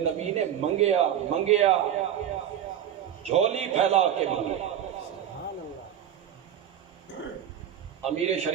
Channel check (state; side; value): quieter; left; 10.0 dB